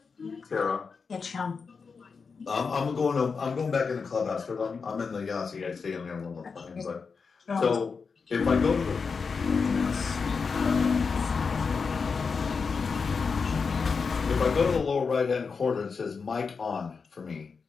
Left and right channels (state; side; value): quieter; right; 5.2 dB